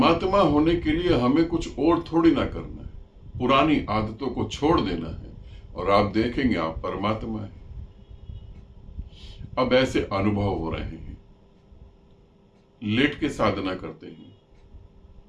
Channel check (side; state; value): both; identical; correlation 1.00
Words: होने के लिए हमें कुछ और थोड़ी ना करना है, पुरानी आदतों को छोड़ देना है और आप देखेंगे आप परमात्मा है। अब ऐसे अनुभव हो रहे हैं, लेट के साधना करते हैं